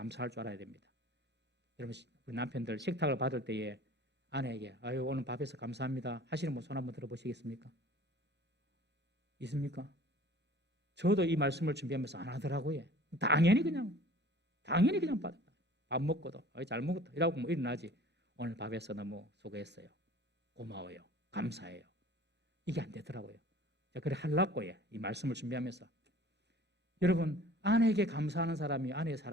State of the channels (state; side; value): normal; both; correlation 0.47